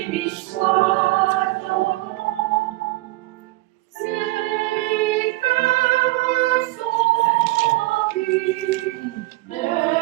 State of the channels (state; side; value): quieter; left; 20.4 dB